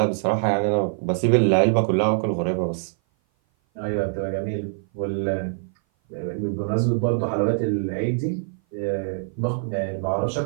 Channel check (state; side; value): silent; left; 57 dB below the other